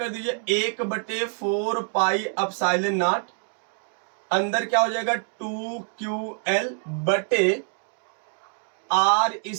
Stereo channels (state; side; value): silent; left; 55 dB below the other